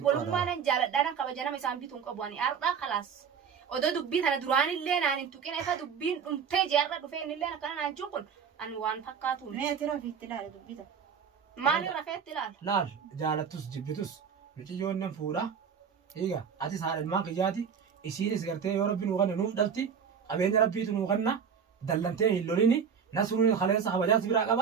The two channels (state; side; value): quieter; left; 6.9 dB